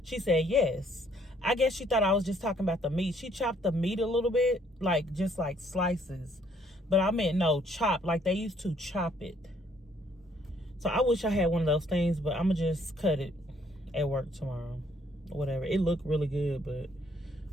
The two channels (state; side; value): normal; both; correlation 0.66